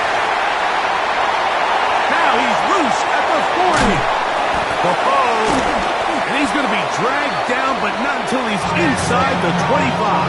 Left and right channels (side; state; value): both; identical; correlation 1.00